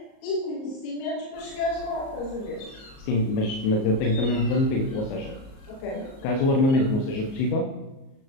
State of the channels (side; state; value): right; late; 38 ms